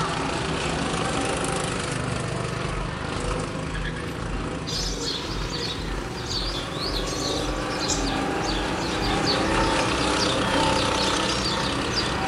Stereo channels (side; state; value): both; identical; correlation 1.00